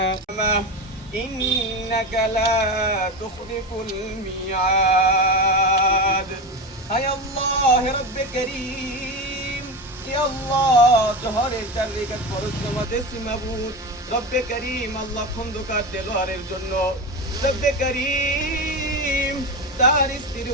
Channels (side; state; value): both; normal; correlation 0.22